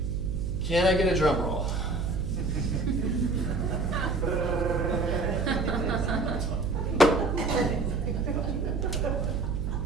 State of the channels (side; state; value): right; noise; hum, 1 dB below the sound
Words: Can I get a drum roll?